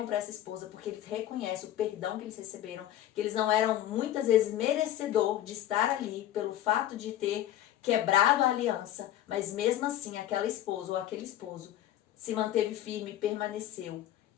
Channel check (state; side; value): quieter; right; 12.5 dB